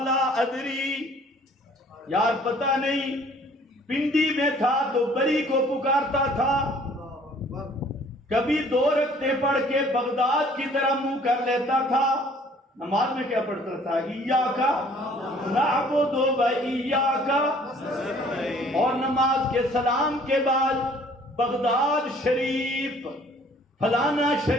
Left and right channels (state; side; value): normal; both; correlation 0.56